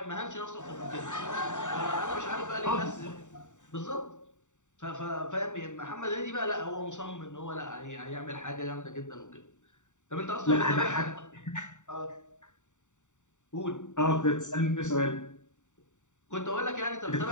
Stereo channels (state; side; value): late; right; 0.85 ms